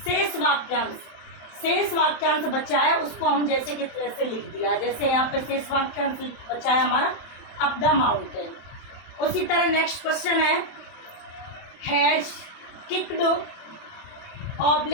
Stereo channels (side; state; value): right; late; 27 ms